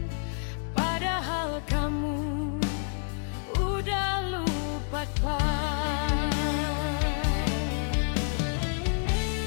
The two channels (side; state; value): right; silent; 55 dB below the other